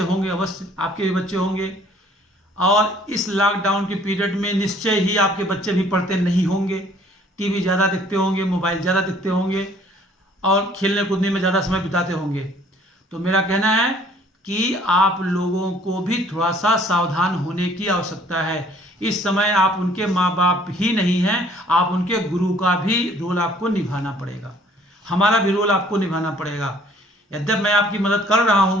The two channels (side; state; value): both; normal; correlation 0.57